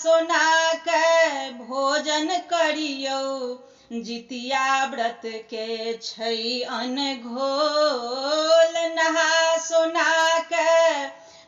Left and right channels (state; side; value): identical; both; correlation 1.00